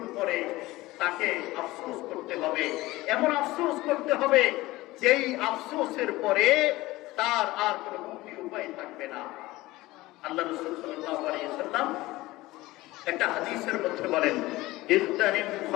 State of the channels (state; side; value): quieter; right; 18.8 dB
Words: পরে তাকে আফসোস করতে হবে। এমন আফসোস করতে হবে যেই আফসোসের পরে তার আর কোনো মুক্তির উপায় থাকবে না। আল্লাহ রাসূল সাল্লাল্লাহু আলাইহি ওয়াসাল্লাম একটা হাদিসের মধ্যে বলেন, ইগতানিম